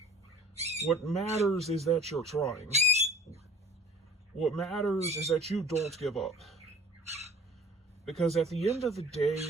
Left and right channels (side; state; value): both; normal; correlation 0.48